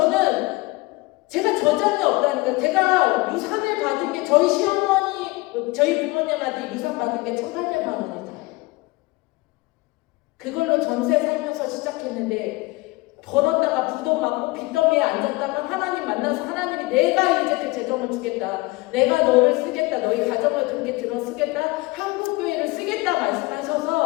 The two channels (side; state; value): right; quieter; 22.7 dB